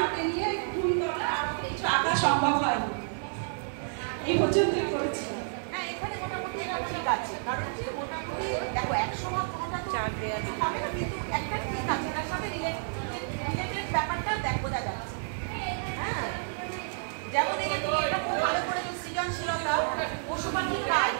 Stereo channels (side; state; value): left; silent; digital silence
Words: নিয়ে ঘুম করা আর কিছু আঁকা সম্ভব হয়। এই পর্যন্তই করেছি। হ্যাঁ, এখানে মোটামুটি ঠিক আছে, কারণ যে মোটামুটি দেখো একসময় কোনোটা তো হবে না, কিন্তু একটা ঠিক আছে, তার সাথে রিলেটেড ব্যাপারটা বোঝা যাচ্ছে। হ্যাঁ, যেমন এটা খুব ভালো করে সৃজনশীলতা, পশু পাখির কাজ,